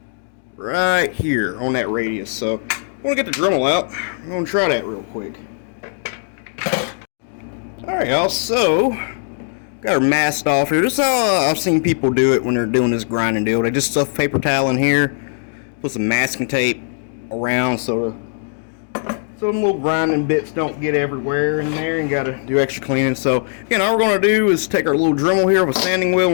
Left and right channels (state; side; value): silent; right; digital silence